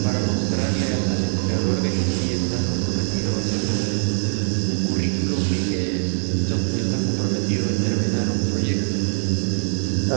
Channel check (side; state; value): left; silent; digital silence